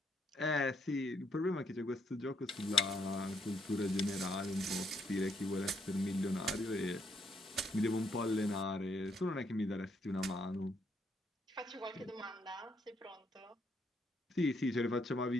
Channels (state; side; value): normal; both; correlation 0.74